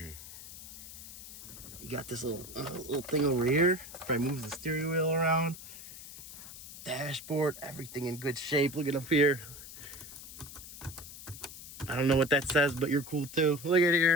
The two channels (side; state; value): left; noise; hiss, 14 dB below the sound